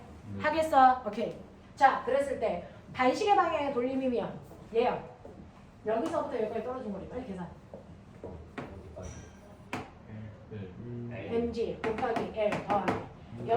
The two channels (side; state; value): both; identical; correlation 1.00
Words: 하겠어? 오케이. 자, 그랬을 때 반시계 방향의 돌림이면 얘요. 여기서부터 여기까지 떨어진 거리. 빨리 계산. 네. mg 곱하기 l 더하기